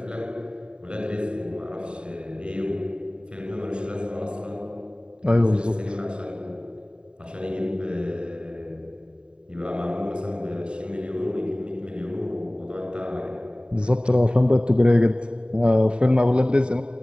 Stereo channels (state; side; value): late; left; 0.051 ms